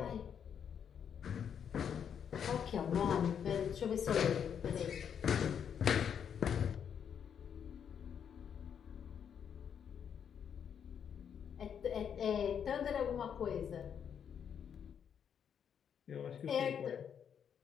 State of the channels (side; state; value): right; quieter; 8.0 dB